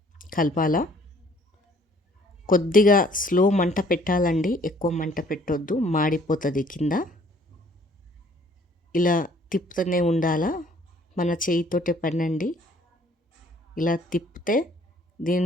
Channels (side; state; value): both; normal; correlation 0.59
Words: కలపాలా. కొద్దిగా స్లో మంట పెట్టాలండి, ఎక్కువ మంట పెట్టొద్దు, మాడిపోతుంది కింద. ఇలా తిప్పుతూనే ఉండాలా. మన చేయితోటే పనండి. ఇలా తిప్పితే